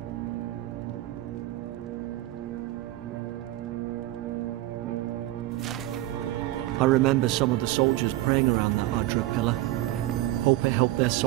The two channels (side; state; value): left; quieter; 16.2 dB